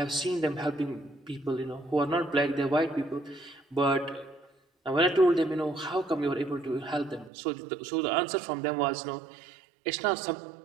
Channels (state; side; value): drops out; left; at 7.3 s